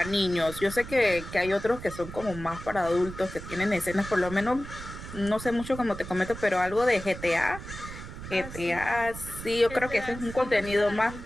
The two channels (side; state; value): right; noise; rumble, 11 dB below the sound